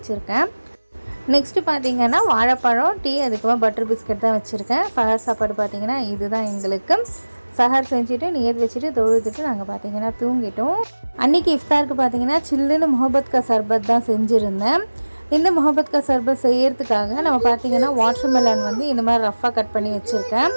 நெக்ஸ்ட்டு பார்த்தீங்கன்னா வாழைப்பழம், டீ, அதுக்கப்புறம் பட்டர் பிஸ்கட் தான் வச்சுருக்கேன். சஹர் சாப்பாடு பார்த்தீங்கன்னா இதுதான் எங்களுக்கு. சஹர் செஞ்சுட்டு நியத் வச்சுட்டு தொழுதுட்டு நாங்கள் பார்த்தீங்கன்னா தூங்கிட்டோம். அன்றைக்கி இஃப்தாருக்கு பார்த்தீங்கன்னா சில்லுன்னு முஹப்பத் கா சர்பத் தான் செஞ்சுருந்தேன். இந்த முஹப்பத் கா சர்பத் செய்யறதுக்காக நம்ம பார்த்தீங்கன்னா வாட்டர் மெலன் வந்து இந்த மாதிரி ரஃப்பாக கட் பண்ணி வச்சுருக்கேன்.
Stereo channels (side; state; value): both; inverted; correlation -1.00